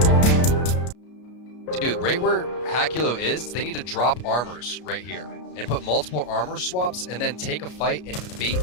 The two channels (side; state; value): right; late; 33 ms